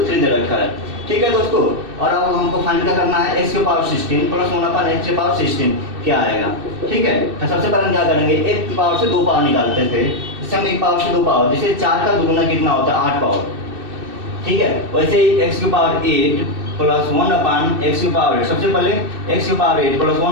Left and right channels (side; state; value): left; late; 2.6 ms